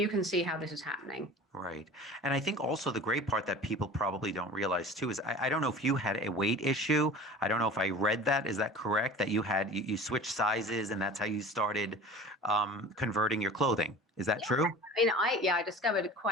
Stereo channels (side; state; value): both; normal; correlation 0.39